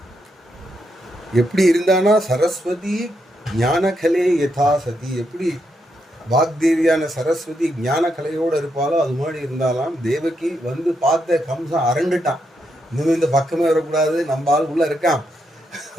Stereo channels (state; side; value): normal; both; correlation 0.81